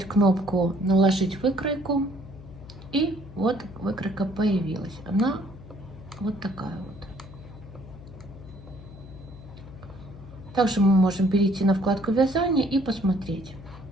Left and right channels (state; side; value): noise; left; hum, 16 dB below the sound